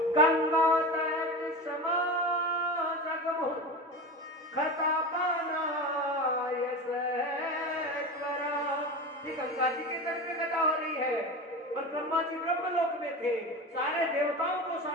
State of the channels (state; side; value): normal; both; correlation 0.27